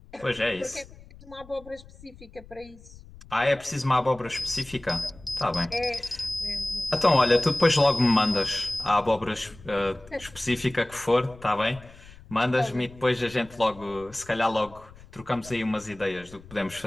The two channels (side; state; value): left; noise; rumble, 21 dB below the sound